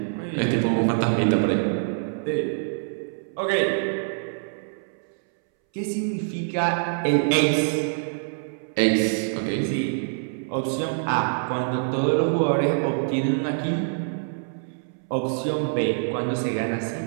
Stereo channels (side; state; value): left; silent; 62 dB below the other